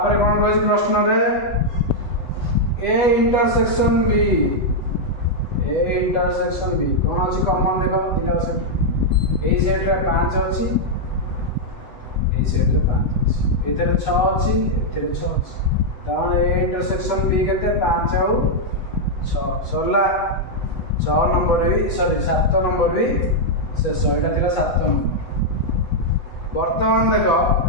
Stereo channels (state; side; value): late; right; 8.1 ms